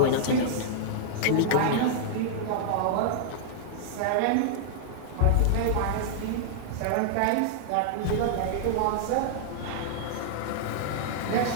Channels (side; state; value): both; different; correlation -0.01